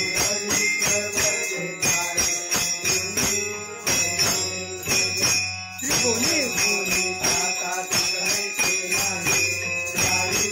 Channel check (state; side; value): identical; both; correlation 1.00